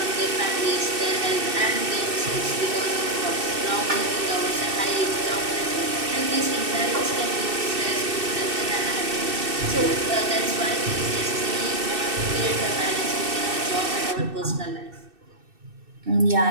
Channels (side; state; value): left; late; 2.6 ms